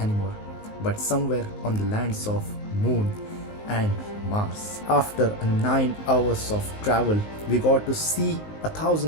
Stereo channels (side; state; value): right; late; 19 ms